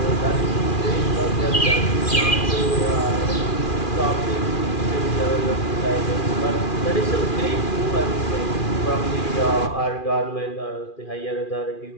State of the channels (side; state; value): right; late; 2.4 ms